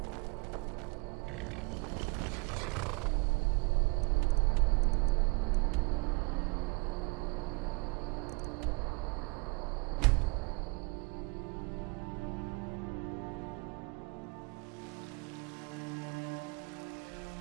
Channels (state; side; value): quieter; left; 29.0 dB